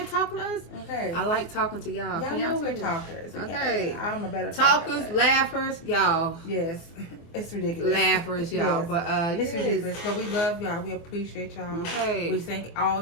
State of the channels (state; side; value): late; right; 24 ms